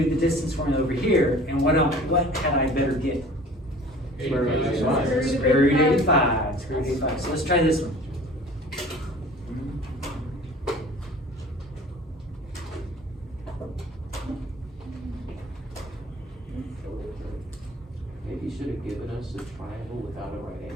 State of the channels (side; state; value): both; normal; correlation 0.46